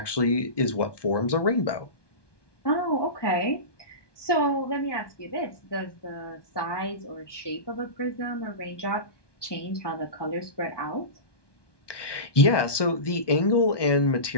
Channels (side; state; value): right; late; 1.2 ms